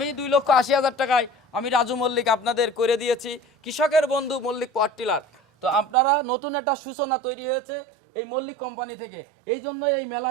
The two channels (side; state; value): left; drops out; at 6.0 s